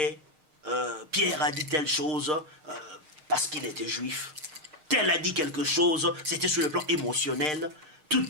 Pierre a dit telle chose parce qu'il était juif. Tel a dit quelque chose, c'était sur le plan émotionnel. Toute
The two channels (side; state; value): left; late; 6.5 ms